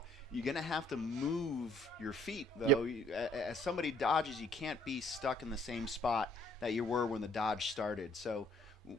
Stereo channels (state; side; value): normal; both; correlation 0.62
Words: You're going to have to move your feet, though. As somebody dodges, you can't be stuck in the same spot that you were when the dodge started. So